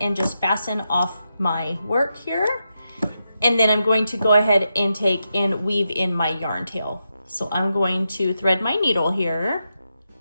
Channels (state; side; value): inverted; both; correlation -0.86